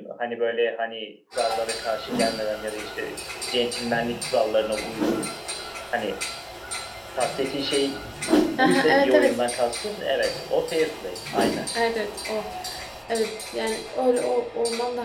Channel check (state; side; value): identical; both; correlation 1.00